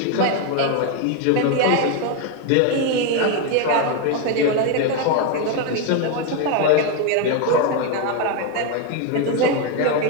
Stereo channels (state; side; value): different; both; correlation 0.01